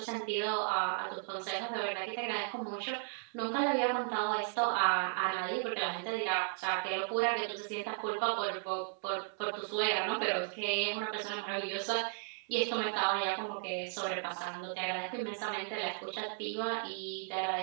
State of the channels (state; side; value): silent; left; 54 dB below the other